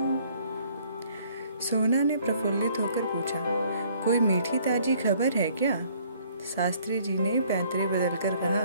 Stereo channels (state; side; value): inverted; both; correlation -0.60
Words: सोना ने प्रफुल्लित होकर पूछा, कोई मीठी ताजी खबर है क्या? शास्त्री जी ने पैंतरे बदलकर